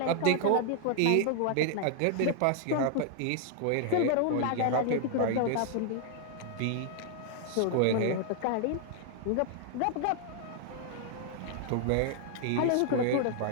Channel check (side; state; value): both; different; correlation 0.00